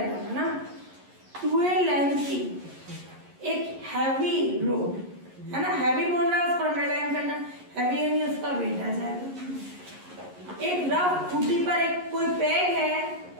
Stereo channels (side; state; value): left; late; 11 ms